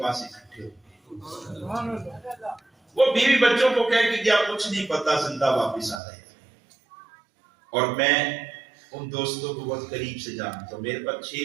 اکٹھے ہوں گے۔ وہ بیوی بچوں کو کہہ کہ کیا کچھ نہیں پتا، زندہ واپس آ رہے ہیں۔ اور میں ان دوستوں کو بہت قریب سے جانتا ہوں، میرے پاس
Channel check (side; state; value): left; drops out; at 6.0 s